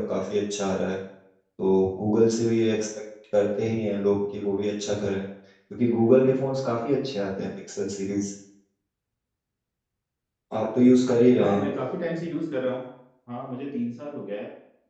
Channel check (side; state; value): both; identical; correlation 1.00